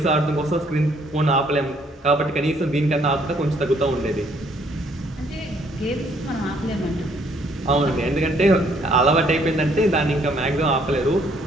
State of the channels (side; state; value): both; normal; correlation 0.66